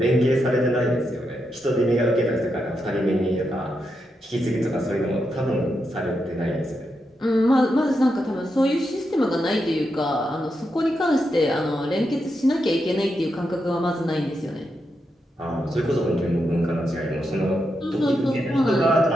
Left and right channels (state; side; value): normal; both; correlation 0.84